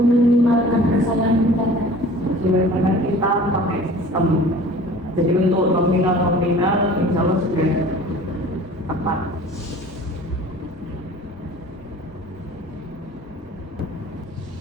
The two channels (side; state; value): both; normal; correlation 0.45